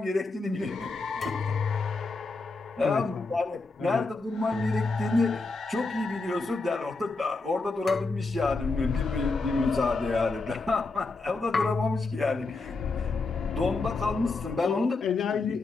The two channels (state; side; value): quieter; right; 3.7 dB